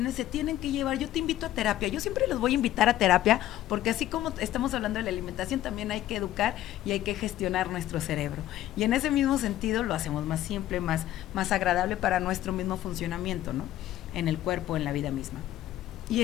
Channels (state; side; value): quieter; right; 13.6 dB